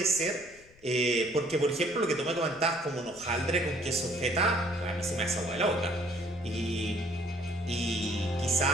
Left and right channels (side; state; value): left; noise; rumble, 26 dB below the sound